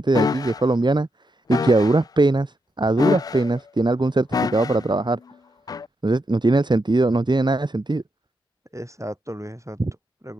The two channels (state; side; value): normal; both; correlation 0.83